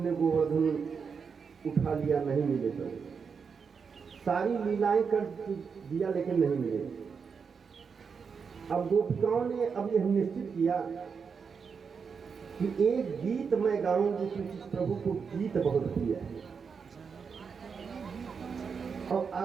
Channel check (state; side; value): quieter; left; 5.9 dB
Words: गोवर्धन उठा लिया, नहीं मिले तो। सारी लीलाएं कर दिया लेकिन नहीं मिले। अब गोपिकाओं ने अब यह निश्चित किया कि एक गीत मैं गाऊंगी, क्योंकि प्रभु को गीत बहुत प्रिय है। और